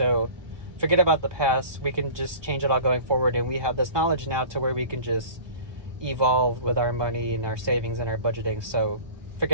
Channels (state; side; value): late; left; 1.2 ms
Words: forget about the past. We can just change it all going forward, and we have this knowledge now to where we can just evolve with our money and our savings and our budgeting. So